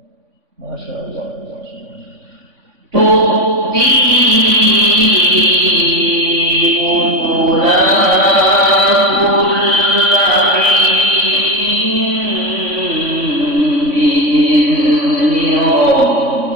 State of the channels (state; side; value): late; left; 3.5 ms